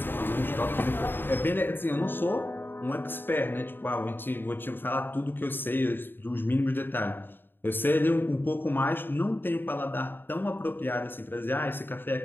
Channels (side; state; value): right; late; 0.097 ms